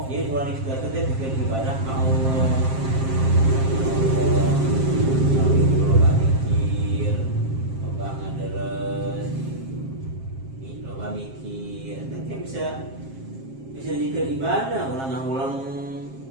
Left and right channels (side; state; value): left; late; 7.5 ms